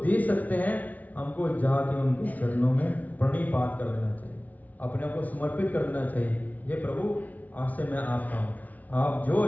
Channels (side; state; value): right; late; 0.074 ms